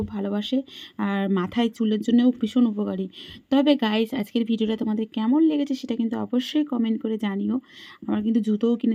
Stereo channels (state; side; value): identical; both; correlation 1.00